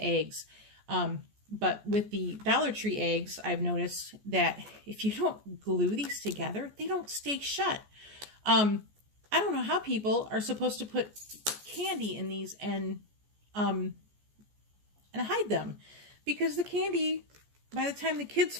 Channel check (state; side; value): late; left; 14 ms